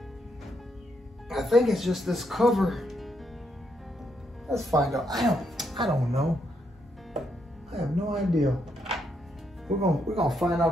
I think it's just this cover. Let's find out. I don't know. I have no idea. We're gonna find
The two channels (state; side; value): normal; both; correlation 0.77